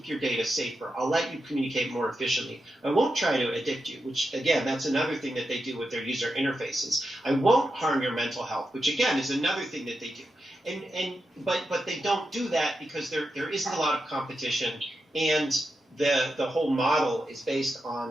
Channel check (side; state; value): both; normal; correlation 0.87